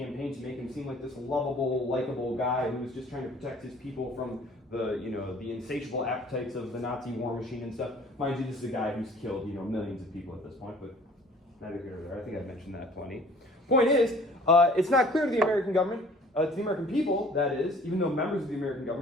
to make him seem like this lovable, likable guy who was just trying to protect his people from the insatiable appetites of the Nazi war machine and stuff. Mind you, this is a guy who's killed, millions of people at this point, but neither here nor there. I think I've mentioned that plenty. Point is, it's not clear to the American government, to the American people, that is, even though members of the American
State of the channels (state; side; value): normal; both; correlation 0.52